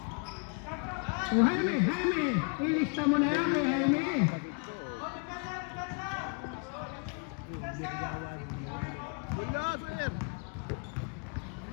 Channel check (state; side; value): quieter; right; 36.5 dB